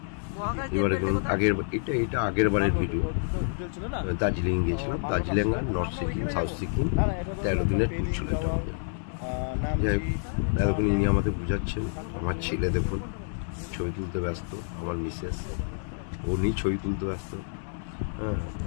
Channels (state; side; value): silent; right; 59 dB below the other